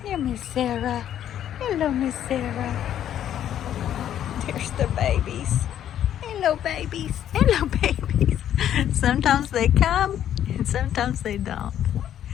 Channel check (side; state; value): right; quieter; 10.6 dB